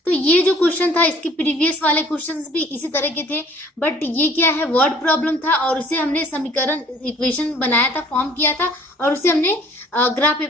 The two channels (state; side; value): normal; both; correlation 0.54